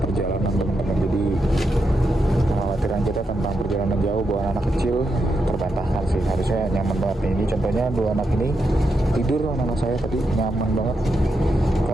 perjalanan teman-teman. Jadi kekhawatiran kita tentang perjalanan jauh bawa anak kecil terbantahkan sih, harusnya nyaman banget nih. Ini contohnya dua anak ini tidur, anak saya tadi nyaman banget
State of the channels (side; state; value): both; normal; correlation 0.84